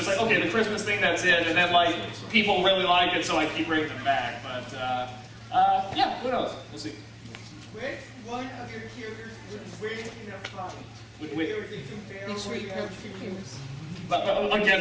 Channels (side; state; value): both; identical; correlation 1.00